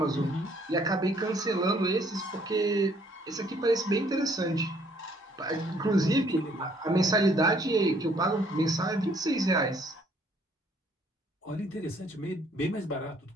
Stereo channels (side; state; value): both; normal; correlation 0.64